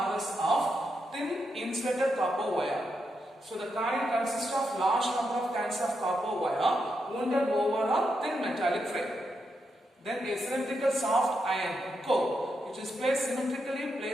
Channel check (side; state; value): both; normal; correlation 0.83